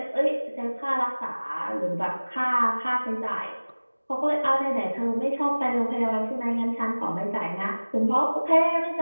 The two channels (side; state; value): both; inverted; correlation -1.00